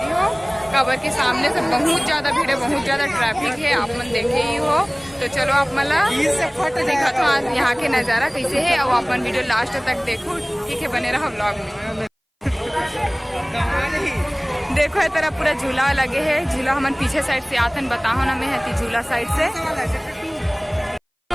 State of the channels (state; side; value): identical; both; correlation 1.00